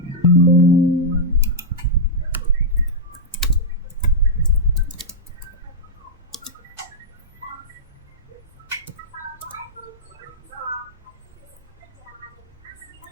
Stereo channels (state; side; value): normal; both; correlation -0.07